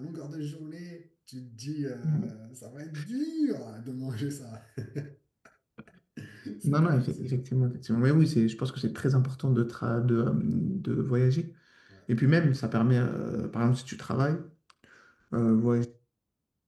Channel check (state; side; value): identical; both; correlation 1.00